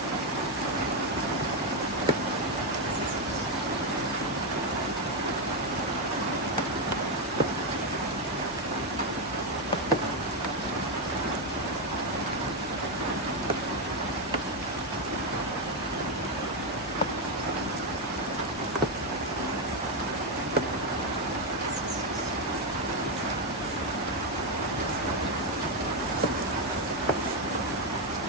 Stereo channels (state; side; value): normal; both; correlation 0.05